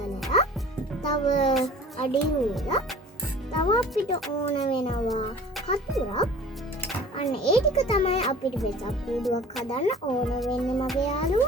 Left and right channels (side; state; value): both; normal; correlation 0.45